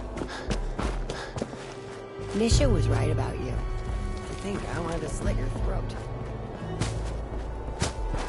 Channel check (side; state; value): both; identical; correlation 1.00